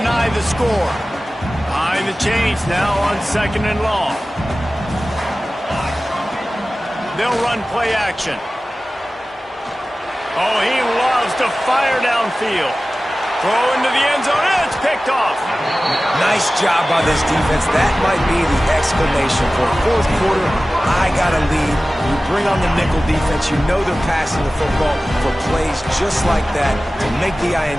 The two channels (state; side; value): normal; both; correlation 0.96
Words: the score. Behind the chains now on 2nd and long. They'll run play action. Oh, he loves to fire downfield. Throw into the end zone, and it's picked off. Nice job by this defense. That might be the exclamation point. 4th quarter, I got a lead. You bring on the nickel defense. You know they're passing the football for plays just like that to make the